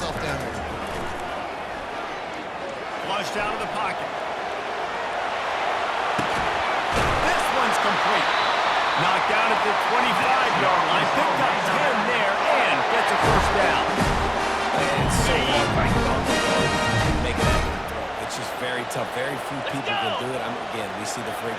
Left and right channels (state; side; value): identical; both; correlation 1.00